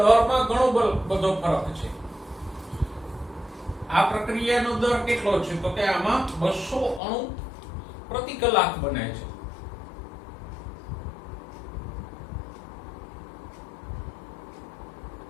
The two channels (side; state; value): right; drops out; at 7.0 s